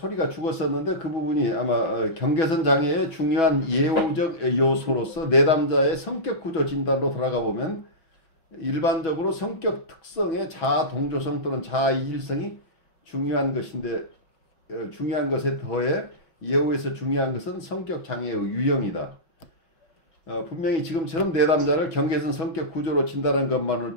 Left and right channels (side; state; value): right; late; 6.1 ms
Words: 죽었었는데 그 부분이 아마 경계선 장애의 중요한 예후적 요소로서 내담자의 성격 구조 진단으로 돌아가 보면 일반적으로 성격 특성의 자아 동조성 또는 자아 이질성이 중요한 것인데 중요한 것에 더해 예후에서 중요한 것은 성격 장애의 유형이다. 분명히 지금처럼 내담자를 경계선 성격 구조로 진단하는 것만으로